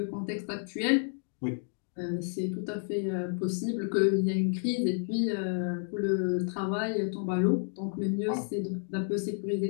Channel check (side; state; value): right; silent; 57 dB below the other